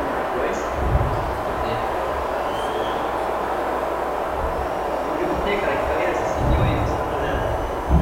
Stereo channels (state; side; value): identical; both; correlation 1.00